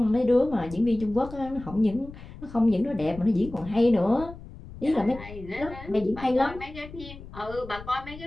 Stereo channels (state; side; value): noise; left; rumble, 15 dB below the sound